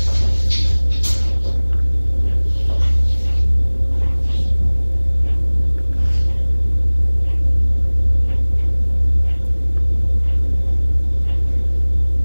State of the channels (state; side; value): inverted; both; correlation -1.00